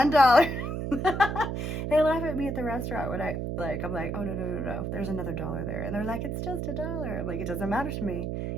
They laugh at me at the restaurant when I'm like, oh, no, there's another dollar there. And they're like, it's just $1. I'm like, it doesn't matter to me.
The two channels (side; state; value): right; noise; hum, 3 dB below the sound